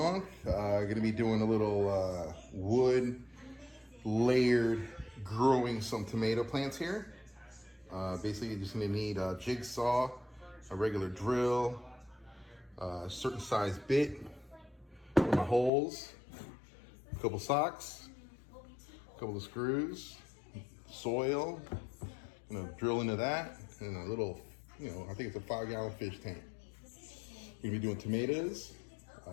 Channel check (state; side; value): drops out; right; at 15.7 s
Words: Going to be doing a little wood layered growing some tomato plants here. Basically, you're just going to need a jigsaw, a regular drill, a certain size bit for my holes, a couple socks, a couple of screws, soil, drill into that, and a little, I think it's a 5-gallon fish tank. We're gonna be doing tomatoes.